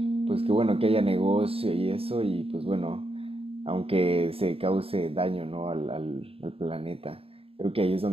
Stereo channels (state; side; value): late; left; 0.28 ms